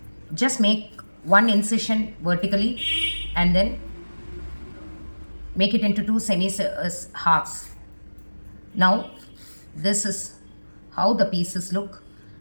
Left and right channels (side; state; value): both; inverted; correlation -1.00